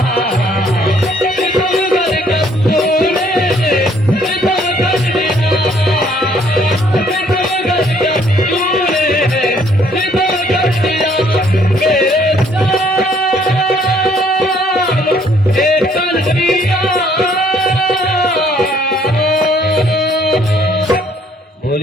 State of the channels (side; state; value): both; normal; correlation 0.64